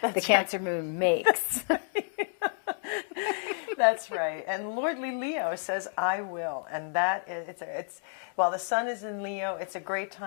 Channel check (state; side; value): silent; right; digital silence